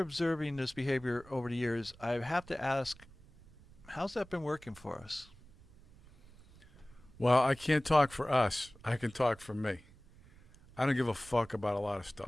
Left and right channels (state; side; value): noise; right; rumble, 23 dB below the sound